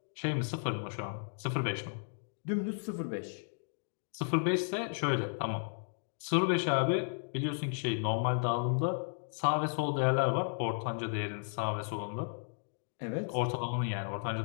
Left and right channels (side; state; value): right; silent; digital silence